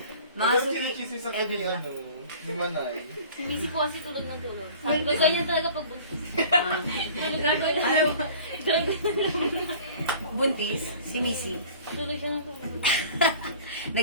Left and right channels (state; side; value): inverted; both; correlation -0.46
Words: Mga Mga suki, sinichismis sa kami, ano, ni Manay. Si Missy po kasi tulog ng tulog. Sabi ko, ganyan talaga pag buntis. ah, Tulog na tulog. buntis, si Missy. Tulog siya ng tulog.